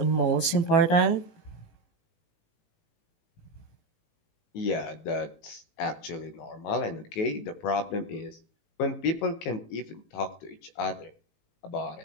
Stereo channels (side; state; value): right; late; 18 ms